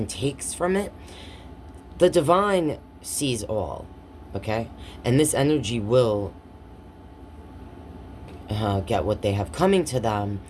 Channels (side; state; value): both; identical; correlation 1.00